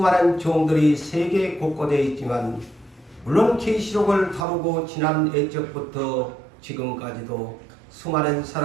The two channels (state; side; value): drops out; left; at 4.5 s